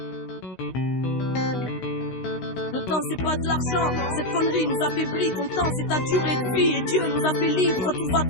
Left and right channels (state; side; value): late; right; 16 ms